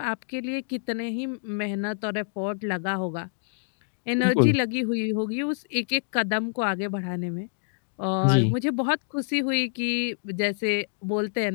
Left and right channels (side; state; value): right; silent; digital silence